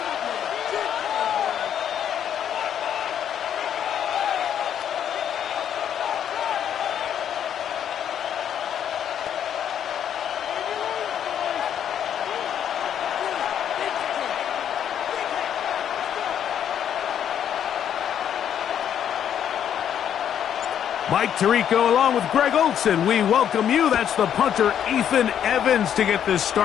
Mike Tirico along with Greg Olson. We welcome you. That's the punter, Ethan Evans, to get this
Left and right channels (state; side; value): quieter; right; 9.3 dB